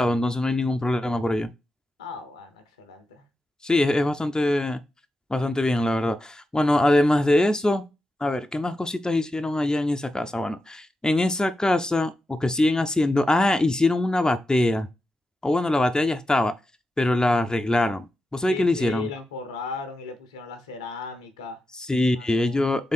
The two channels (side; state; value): both; normal; correlation 0.90